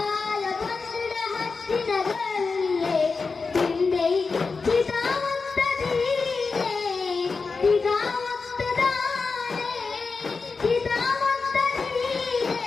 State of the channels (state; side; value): quieter; right; 4.5 dB